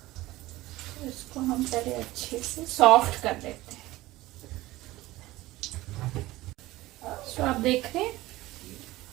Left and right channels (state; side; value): quieter; left; 18.0 dB